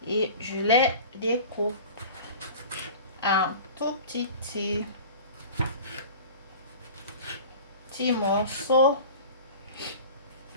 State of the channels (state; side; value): inverted; both; correlation -0.39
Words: et je les découpe en tout petits morceaux.